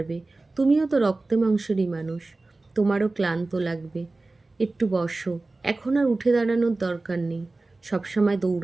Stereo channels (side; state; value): left; quieter; 3.3 dB